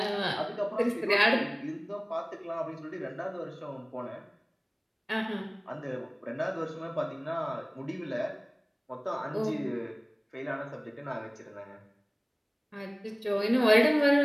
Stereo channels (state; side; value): identical; both; correlation 1.00